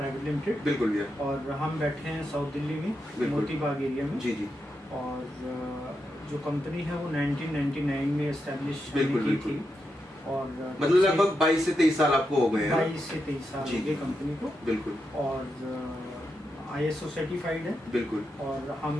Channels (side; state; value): both; normal; correlation 0.85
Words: limited. बिल्कुल भैया। और हम बैठे हैं साउथ दिल्ली में, मोती बाग एरिया में। जी जी। और जो कंपनी है वो 1999 में एस्टेब्लिश की थी और मतलब लगभग 22 से 23 साल आपको हो गए हैं। 22 से 23 साल हो गए कंपनी को। बिल्कुल। और ISO सर्टिफाइड है। बिल्कुल। और हम